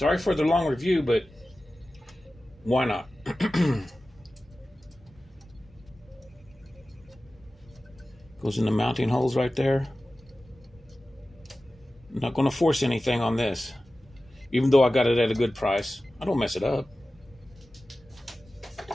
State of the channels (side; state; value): both; normal; correlation 0.95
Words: for the long review, but why not? Goes in the mounting holes right there. I'm not going to force anything on this, even though I got it at a good price. I don't mess it up.